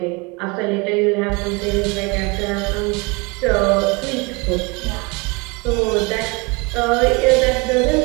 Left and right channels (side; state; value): left; quieter; 28.1 dB